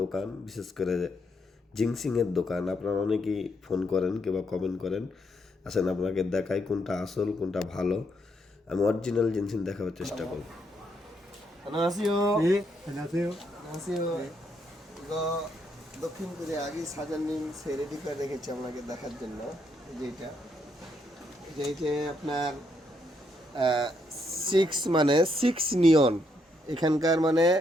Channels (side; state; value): both; normal; correlation 0.76